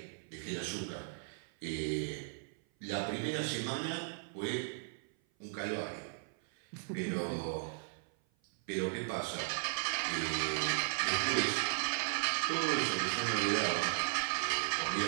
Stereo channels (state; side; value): silent; left; 54 dB below the other